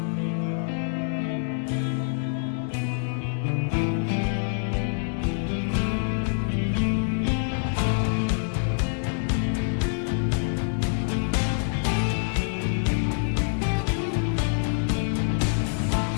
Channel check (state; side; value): silent; right; digital silence